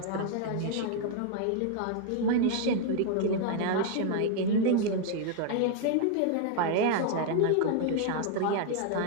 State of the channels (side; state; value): both; different; correlation 0.00